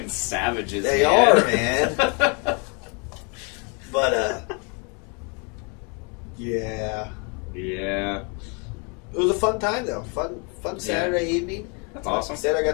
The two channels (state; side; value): quieter; right; 34.8 dB